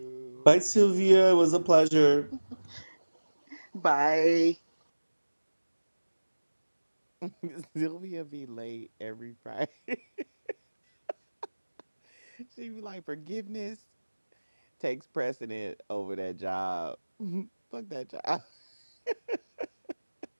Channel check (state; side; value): inverted; both; correlation -1.00